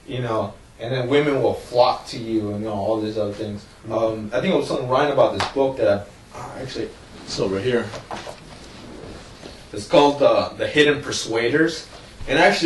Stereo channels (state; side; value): identical; both; correlation 1.00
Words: you know, and then women will flock to you, and you know, all these other things. I think it was something Ryan about this book that actually it's over here. It's called The Hidden Persuaders, and